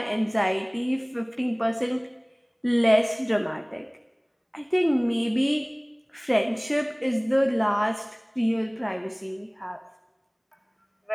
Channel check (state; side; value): identical; both; correlation 1.00